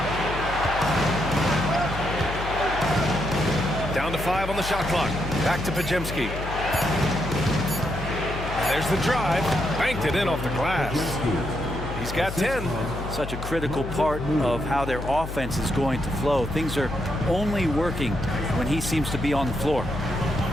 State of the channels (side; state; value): left; noise; hum, 7 dB below the sound